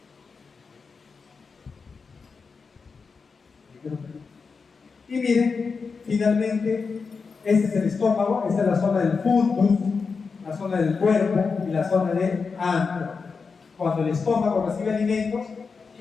Y miren, finalmente, este es el estómago, esta es la zona del fundus, la zona del cuerpo y la zona del antro. Cuando el estómago recibe alimentos,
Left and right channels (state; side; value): quieter; right; 5.0 dB